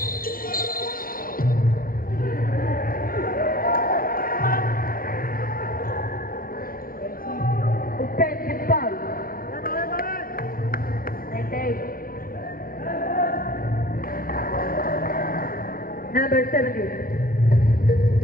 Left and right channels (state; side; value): late; right; 0.42 ms